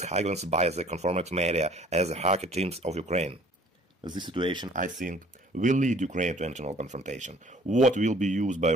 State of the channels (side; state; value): both; normal; correlation 0.54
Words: highlighted by the confrontation media as the hacker teams of Ukraine. This situation, I think, will lead Ukraine to internal confrontation. What will be used by